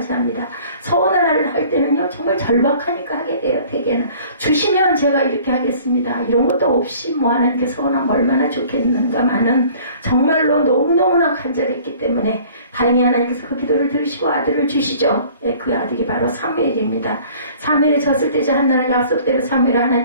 합니다. 서원을 할 때는요 정말 절박하니까 하게 돼요. 대개는 주시면 제가 이렇게 하겠습니다. 이런 것도 없이 뭐 하나님께 서원하면 얼마나 좋겠는가만은 정말로 너무너무나 간절했기 때문에 다행히 하나님께서 그 기도를 들으시고 아들을 주시죠. 그 아들이 바로 사무엘입니다. 사무엘에 졌을 때 한나는 약속대로 사무엘을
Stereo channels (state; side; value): inverted; both; correlation -0.51